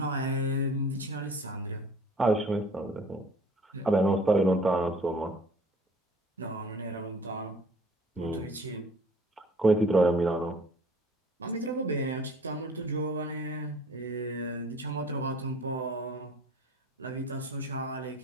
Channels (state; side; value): normal; both; correlation 0.51